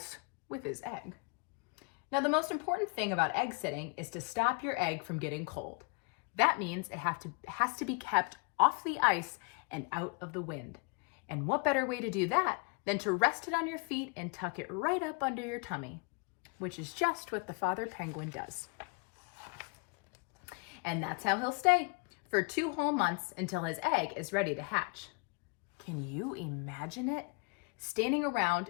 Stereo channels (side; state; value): right; quieter; 32.1 dB